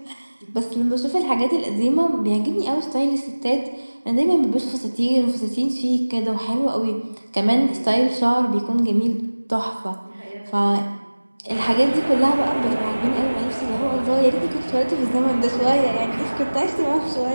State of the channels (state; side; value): inverted; both; correlation -1.00